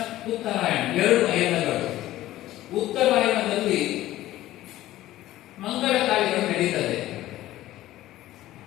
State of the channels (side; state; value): right; quieter; 15.0 dB